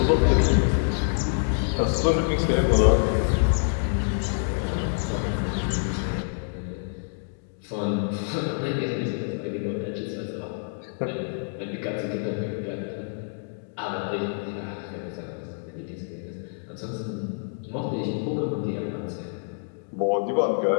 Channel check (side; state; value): right; silent; digital silence